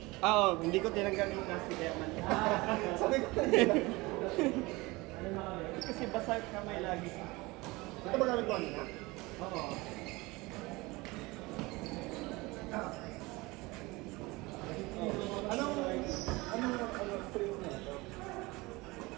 Oo, hindi ko tinanggal yung plastic kaya man. Sabi ko Kasi basa kamay lagi. ito ba gamit ko kanina? Oo. Anong spring na ito?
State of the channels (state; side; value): quieter; left; 22.7 dB